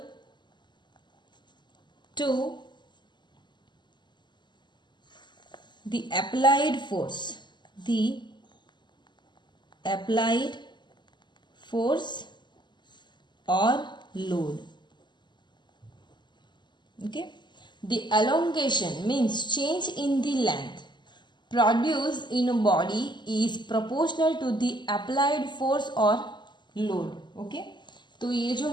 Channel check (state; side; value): late; right; 0.22 ms